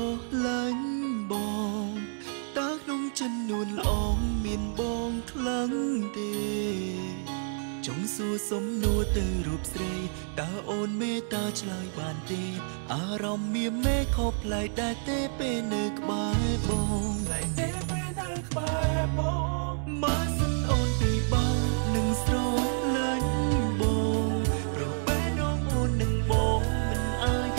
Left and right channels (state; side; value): silent; left; digital silence